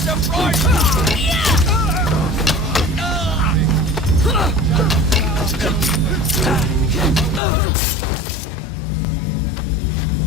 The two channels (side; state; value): right; drops out; at 7.4 s